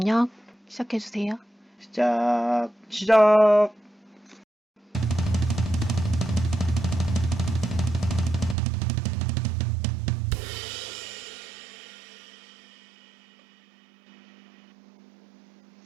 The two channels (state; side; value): drops out; left; at 8.6 s